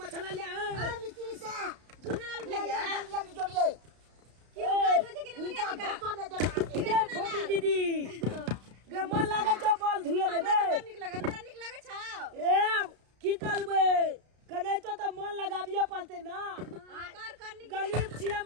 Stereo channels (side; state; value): left; late; 33 ms